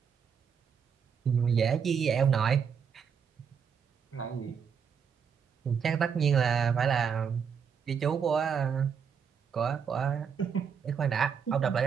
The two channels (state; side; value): quieter; left; 6.9 dB